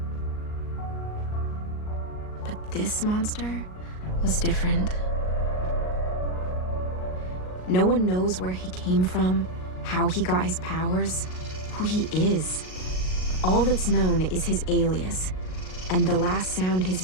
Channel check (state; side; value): late; right; 38 ms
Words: But this monster was different. No one knows where he came from, how he got his powers, who he is. All that's known is his alias, and the last sound his